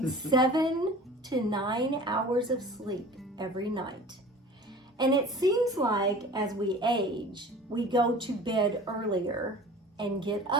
7 to 9 hours of sleep every night. And it seems like as we age, we go to bed earlier and get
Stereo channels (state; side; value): normal; both; correlation 0.42